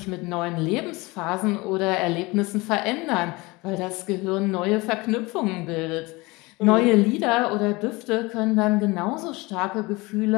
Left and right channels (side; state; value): right; quieter; 23.5 dB